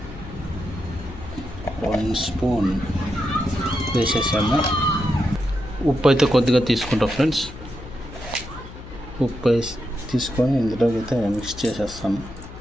1 స్పూన్ వేసేసాము. ఉప్పు అయితే కొద్దిగా తీసుకుంటాం ఫ్రెండ్స్. ఉప్పు వేసి తీసుకొని ఇందులోకి అయితే మిక్స్ చేసేస్తాను.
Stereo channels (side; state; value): left; noise; hum, 14 dB below the sound